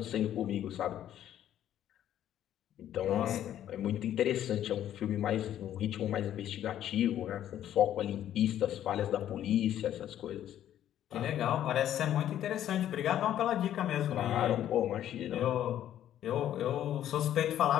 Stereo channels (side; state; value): right; quieter; 11.4 dB